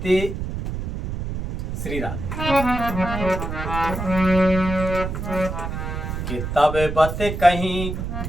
ते श्री राधे कि तब बत कहीं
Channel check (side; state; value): right; noise; rumble, 5 dB below the sound